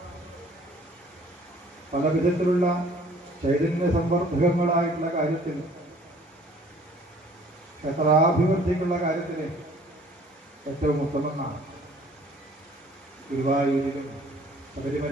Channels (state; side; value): normal; both; correlation 0.55